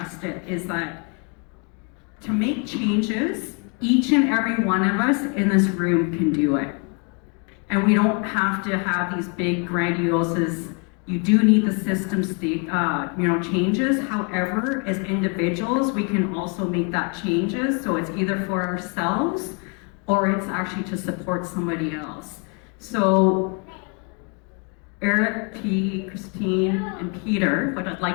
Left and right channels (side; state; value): right; quieter; 35.4 dB